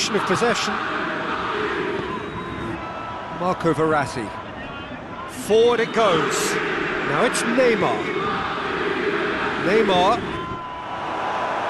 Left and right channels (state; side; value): identical; both; correlation 1.00